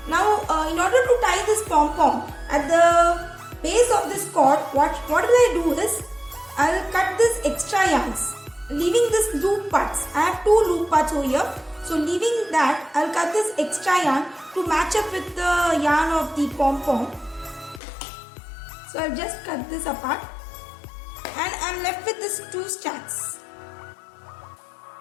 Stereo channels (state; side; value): drops out; right; at 17.8 s